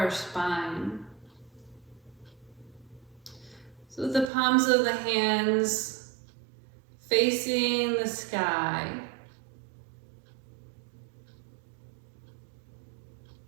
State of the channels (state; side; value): drops out; left; at 4.2 s